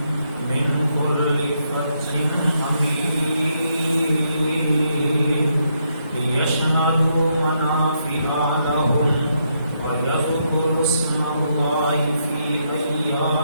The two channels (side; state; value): both; inverted; correlation -0.77